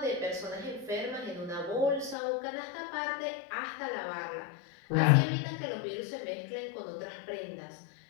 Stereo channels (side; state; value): right; drops out; at 2.1 s